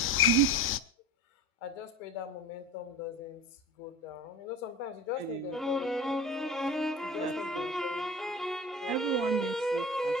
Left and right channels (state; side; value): normal; both; correlation 0.33